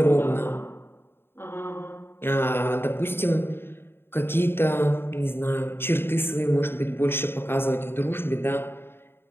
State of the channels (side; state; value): right; late; 0.11 ms